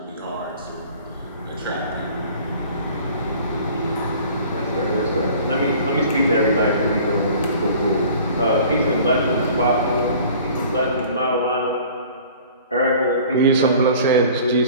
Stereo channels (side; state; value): both; inverted; correlation -0.47